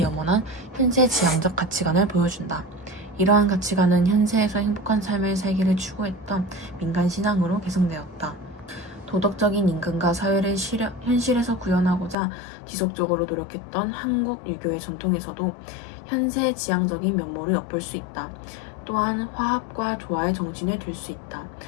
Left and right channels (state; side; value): drops out; right; at 12.2 s